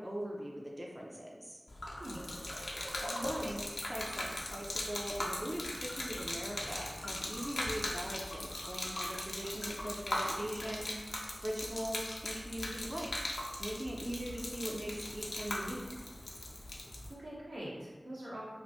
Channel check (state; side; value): normal; both; correlation 0.97